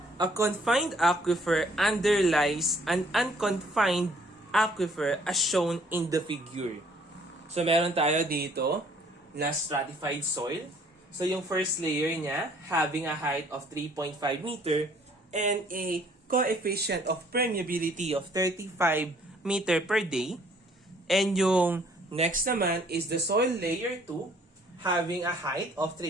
A confined aquifer underlies an unconfined aquifer as shown in the figure. So meron tayo dito na stratified soil. So yung first layer niya having a height of 3.5 meter and a coefficient of permeability of 35 meter per day. And yung next naman is the soil layer 2 having a height of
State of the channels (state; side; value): normal; both; correlation 0.60